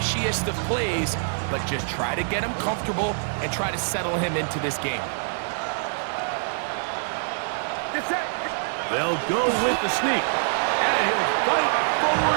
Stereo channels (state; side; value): silent; left; digital silence